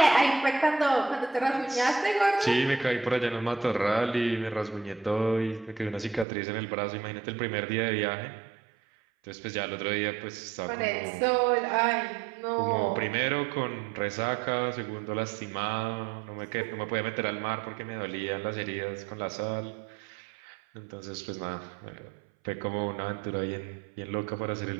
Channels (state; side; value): drops out; left; at 6.2 s